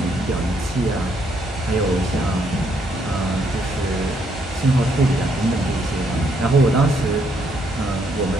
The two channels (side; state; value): both; normal; correlation 0.72